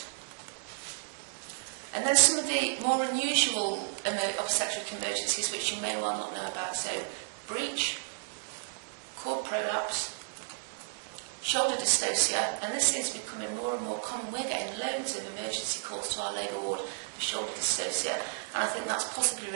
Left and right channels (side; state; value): left; silent; digital silence